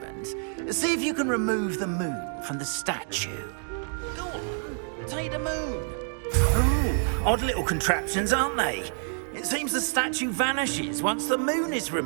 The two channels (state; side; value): silent; left; 56 dB below the other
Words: see if you can remove the moon from the statue. Go on, take the moon. Oh, odd little contraptions, aren't they? It seems the statue vanishes once the moon is